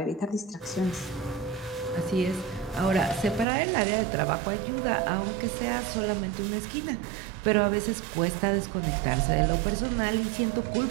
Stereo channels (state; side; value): drops out; left; at 3.5 s